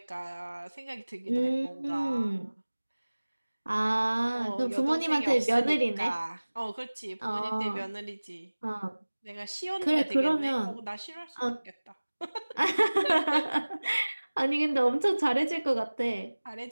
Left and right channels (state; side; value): inverted; both; correlation -1.00